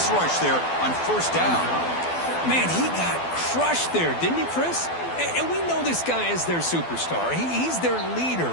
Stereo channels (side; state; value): right; late; 12 ms